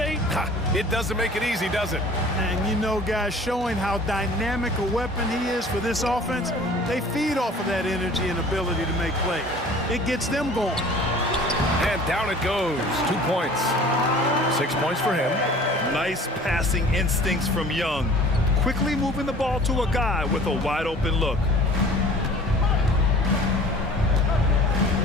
It doesn't make it easy, does it? And you know, guys, showing how dynamic a weapon he is for this offense, they feed off of that energy and ability to make plays. It gets them going. And down it goes. 2 points. 6 points for him. Nice passing instincts from Young. Quickly moving the ball to a guy with a wide open look.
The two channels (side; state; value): both; normal; correlation 0.47